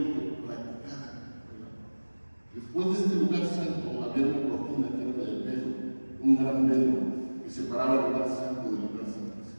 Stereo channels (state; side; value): inverted; both; correlation -1.00